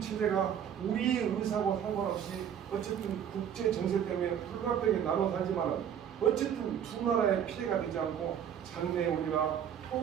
체제가 우리의 의사와 상관없이 어쨌든 국제 정세 때문에 불가피하게 나눠 살지만 어쨌든 두 나라의 피해가 되지 않고 장래에 우리가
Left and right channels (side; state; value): left; quieter; 8.9 dB